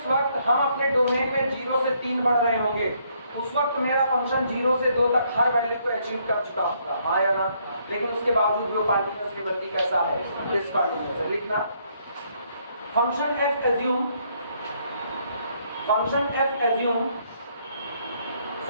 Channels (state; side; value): inverted; both; correlation -0.70